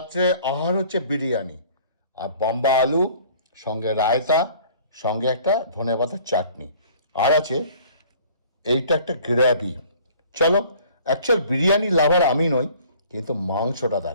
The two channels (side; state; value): both; inverted; correlation -0.52